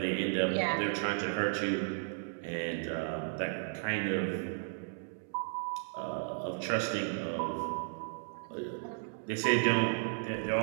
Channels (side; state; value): left; silent; digital silence